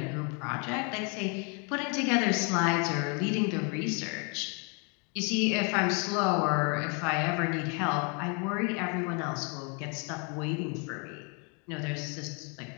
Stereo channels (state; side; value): quieter; right; 34.9 dB